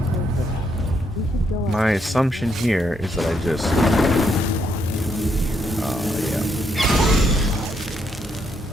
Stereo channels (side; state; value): both; normal; correlation 0.76